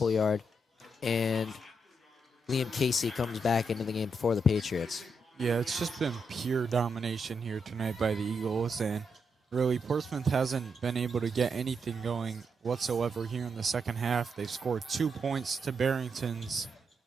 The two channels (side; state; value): both; normal; correlation 0.81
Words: And Liam Casey comes back into the game for the Patriots. Yeah, it's just been pure domination here tonight by the Eagles, and really Portsmouth hasn't been able to get anything going whatsoever here in the second half. They've scored 2 points to Barrington's